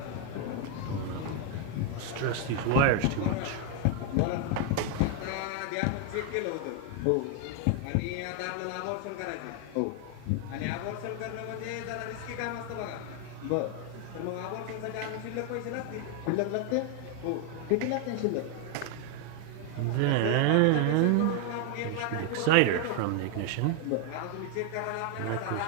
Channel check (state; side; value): different; both; correlation 0.01